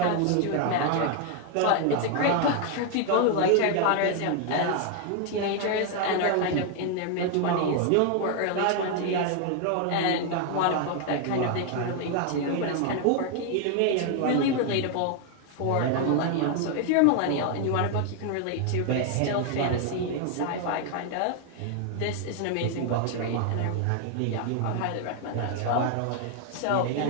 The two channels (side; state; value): both; different; correlation 0.00